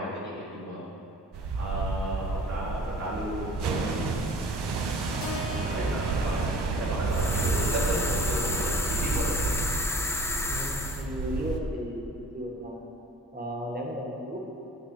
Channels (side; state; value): both; normal; correlation 0.48